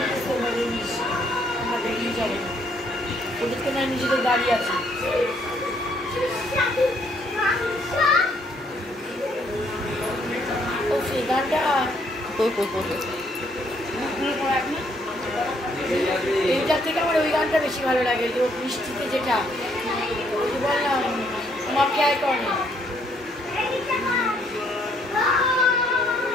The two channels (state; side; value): normal; both; correlation 0.68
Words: ওদের তো না নিজেদের গাড়ি আছে ও সেই গানটা এইটার থেকে আমার ওই গানটা বেশি ভালো লাগে যে বৃষ্টিতে যেটা ওই যে বললাম আমাকে আয় করে